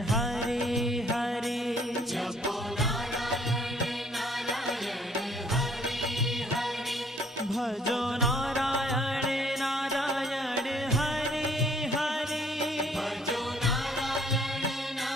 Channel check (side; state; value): both; normal; correlation 0.62